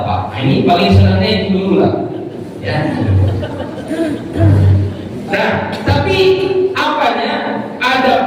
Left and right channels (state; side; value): identical; both; correlation 1.00